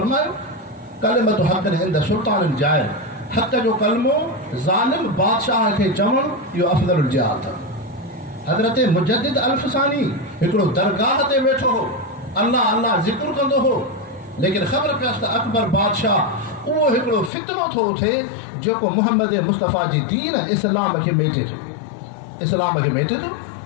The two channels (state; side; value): drops out; right; at 17.3 s